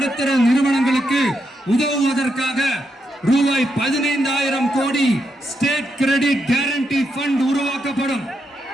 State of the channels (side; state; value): both; normal; correlation 0.82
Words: நிறுவனங்களுக்கு உதவுவதற்காக ரூபாய் 15,000 கோடி ஸ்டேட் கிரெடிட் கேரண்டி ஃபண்ட் உருவாக்கப்படும்.